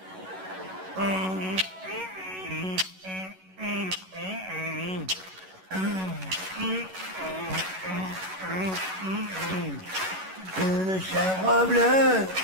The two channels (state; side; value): late; left; 11 ms